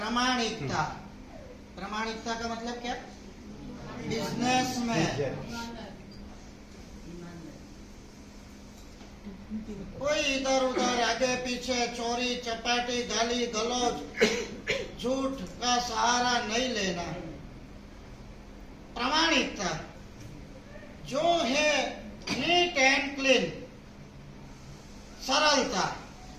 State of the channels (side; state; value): both; identical; correlation 1.00